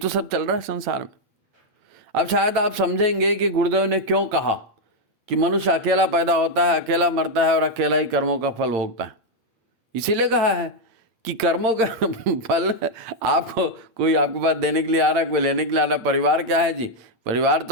सब चल रहा है संसार में। अब शायद आप समझेंगे कि गुरुदेव ने क्यों कहा कि मनुष्य अकेला पैदा होता है, अकेला मरता है और अकेला ही कर्मों का फल भोगता है। इसीलिए कहा है कि कर्मों का फल आपको, कोई आपके पास देने के लिए आ रहा है, कोई लेने के लिए आ रहा है। परिवार क्या है जी? परिवार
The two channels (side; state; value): left; late; 8.9 ms